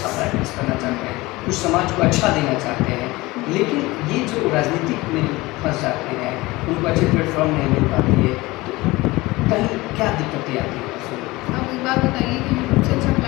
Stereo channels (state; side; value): quieter; right; 20.9 dB